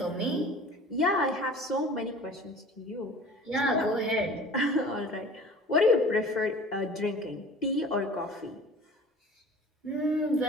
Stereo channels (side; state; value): both; normal; correlation 0.43